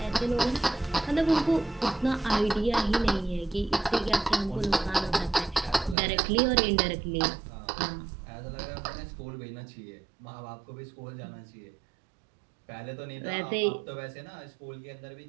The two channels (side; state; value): left; drops out; at 6.0 s